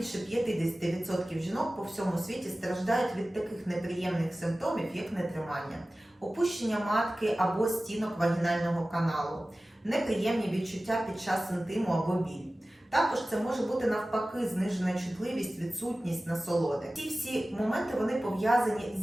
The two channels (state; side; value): normal; both; correlation 0.96